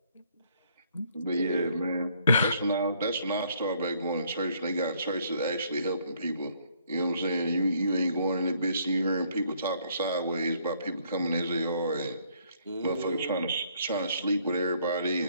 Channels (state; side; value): inverted; both; correlation -0.66